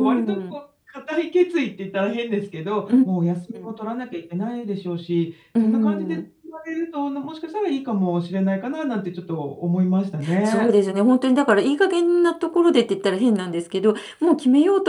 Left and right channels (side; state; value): both; identical; correlation 1.00